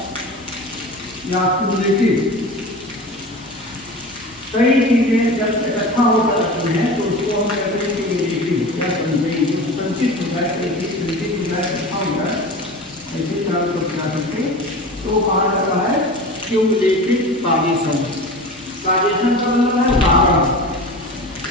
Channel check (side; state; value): both; normal; correlation 0.33